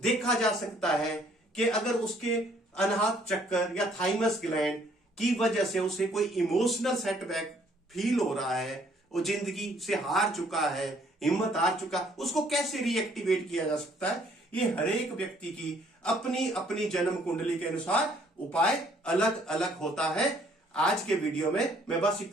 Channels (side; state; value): both; normal; correlation 0.63